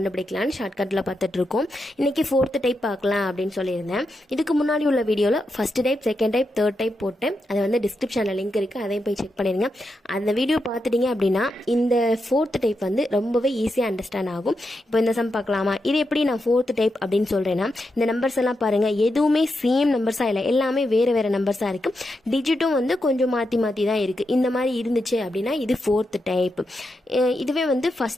ஷார்ட்கட்ல பார்த்துட்டு இருக்கோம். இன்னைக்கு 4th டைப் பார்க்கலாம் அப்படின்னு சொல்லியிருந்தேன். இதுக்கு முன்னாடி உள்ள வீடியோல first type, second type, third type போட்டேன். அது வந்து டிஸ்கிரிப்ஷன்ல லிங்க் இருக்கு, அதையும் போய் செக் பண்ணிருங்க. அந்த வீடியோ பார்த்துட்டீங்க அப்படின்னா இந்த 4th டைப் வந்து ரொம்பவே ஈஸியா அண்டர்ஸ்டாண்ட் ஆகும். இப்போ இந்த சம் பார்க்கலாமா? இது எப்படி நான் 4th டைப் அப்படின்னு சொல்றேன்னா, இந்த நம்பர்ஸ் எல்லாம் பாருங்க, எதுவுமே சேம் நம்பர்ஸா இல்லை, எல்லாமே வேற வேற நம்பர்ஸா இருக்கு. டிஜிட்டும் வந்து கொஞ்சம் மாத்தி மாத்தி தான் இருக்கு. இந்த மாதிரி இருந்துச்சு அப்படின்னா இது 4th டைப். இதுவே வந்து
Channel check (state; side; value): normal; both; correlation 0.86